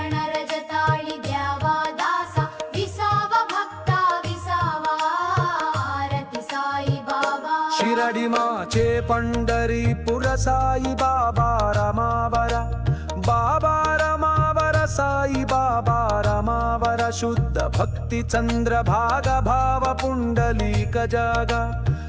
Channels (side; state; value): both; identical; correlation 1.00